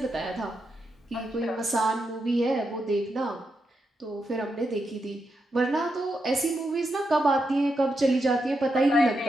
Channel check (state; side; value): normal; both; correlation 0.85